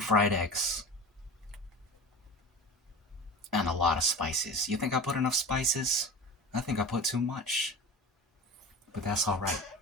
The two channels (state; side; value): normal; both; correlation 0.32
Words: eggs. And a lot of spices. You think I put enough spices? I think I put too much. But that's alright.